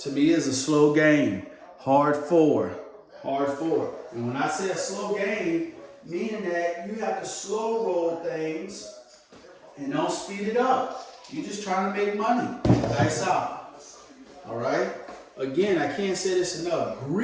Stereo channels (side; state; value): both; identical; correlation 1.00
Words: me, it's a slow game. Hard four. And when I say a slow game, meaning that you have to slow roll things and don't speed it up. You're just trying to make money. Dice out. All right? Again, I can't say this enough.